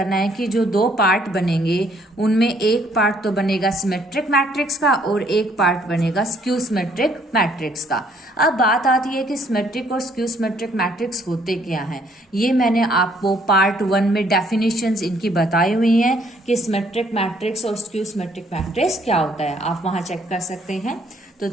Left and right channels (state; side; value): normal; both; correlation 0.65